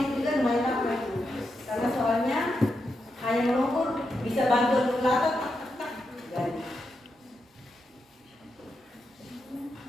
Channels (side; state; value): both; normal; correlation 0.85